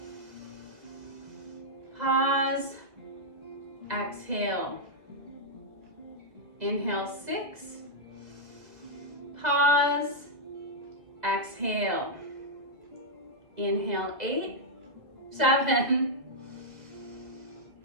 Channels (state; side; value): late; left; 2.0 ms